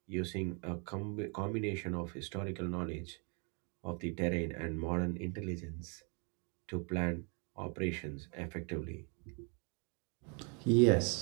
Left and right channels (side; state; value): left; quieter; 36.8 dB